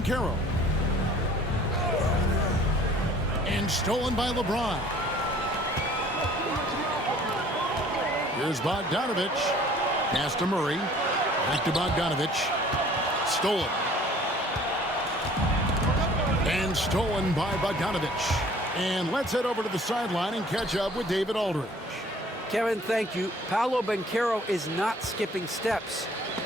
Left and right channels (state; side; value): normal; both; correlation 0.53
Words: And stolen by LeBron. Here's Bogdanovich. Pass to Murray. Back to Bogdanovich. Stolen. And stolen by Bogdanovich. And let's head over to the sideline and catch up with David Aldridge. Kevin, thank you. Paolo Banchero is not skipping steps.